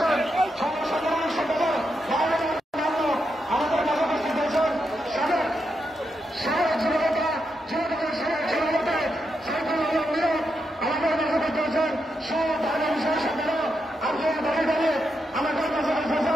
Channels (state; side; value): normal; both; correlation 0.84